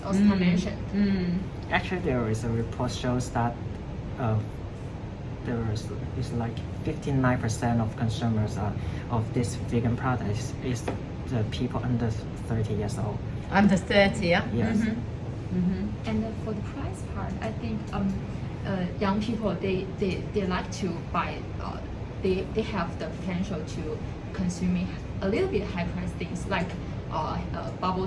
Oscar mentioned. Actually, there is a report shows that is like 59% of consumers of this vegan product is the people under 30 years old. Under 30, yeah? Yes. And for the price part, I think young people they like to buy. They have the potential to consuming a little bit high price things like bubble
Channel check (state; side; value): identical; both; correlation 1.00